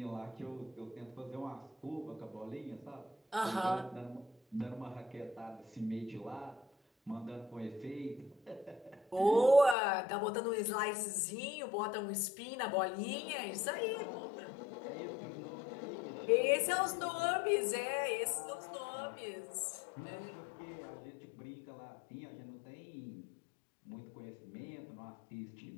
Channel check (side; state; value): right; drops out; at 9.8 s